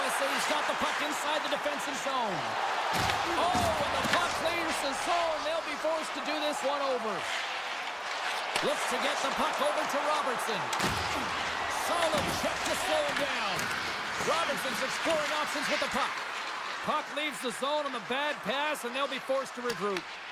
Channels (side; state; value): both; identical; correlation 1.00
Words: got the puck inside the defensive zone. Oh, and the puck clears the zone. They'll be forced to do this one over. Looks to get the puck over to Robertson. Solid check to slow him down. Robertson's exploring options with the puck. Puck leaves the zone on the bad pass, and they'll be forced to regroup.